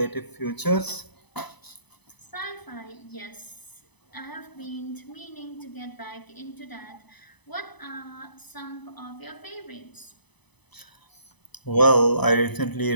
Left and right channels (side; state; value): right; late; 0.99 ms